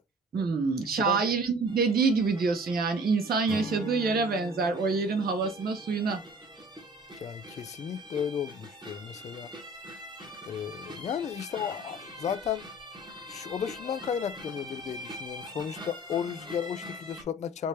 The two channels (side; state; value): both; normal; correlation 0.48